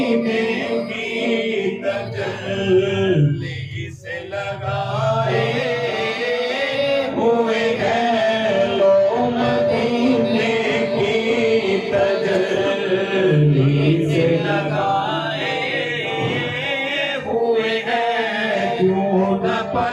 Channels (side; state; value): both; identical; correlation 1.00